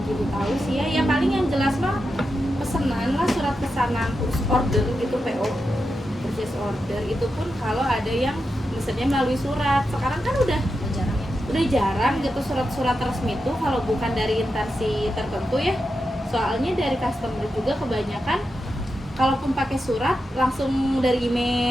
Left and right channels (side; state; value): both; normal; correlation 0.88